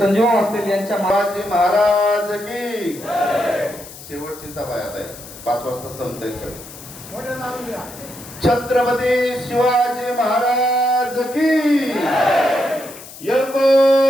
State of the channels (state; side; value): noise; left; hiss, 16 dB below the sound